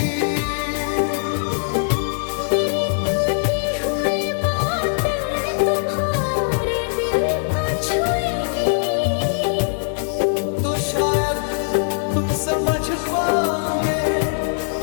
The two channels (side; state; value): right; silent; digital silence